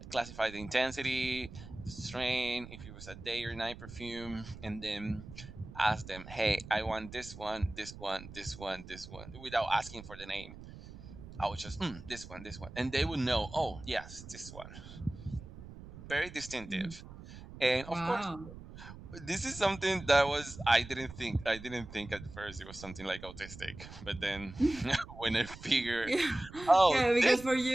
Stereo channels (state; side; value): noise; right; rumble, 14 dB below the sound